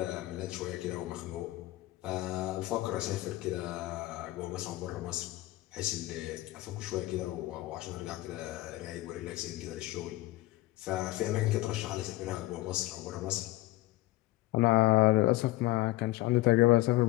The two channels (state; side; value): quieter; right; 18.1 dB